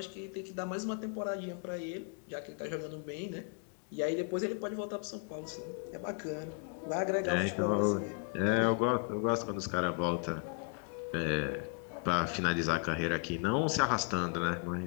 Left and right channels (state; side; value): quieter; right; 37.9 dB